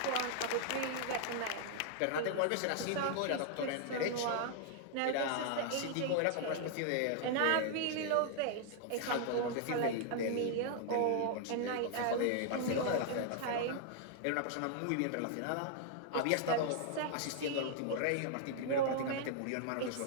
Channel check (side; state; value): both; different; correlation 0.00